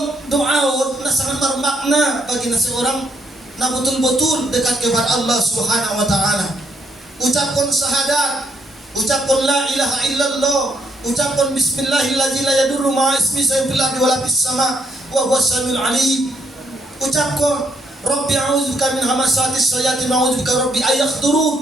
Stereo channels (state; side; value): normal; both; correlation 0.73